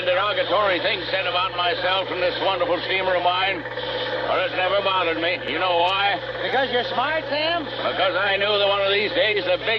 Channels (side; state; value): both; identical; correlation 1.00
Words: derogatory things said about myself from this wonderful steamer of mine, but it's never bothered me. You know why? Because you're smart, Sam? Because I knew that one of these days the